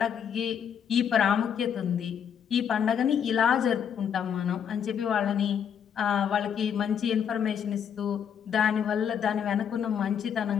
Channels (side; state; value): right; quieter; 8.1 dB